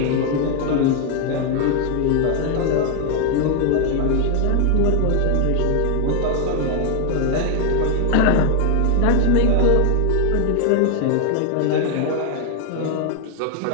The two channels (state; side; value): different; both; correlation 0.00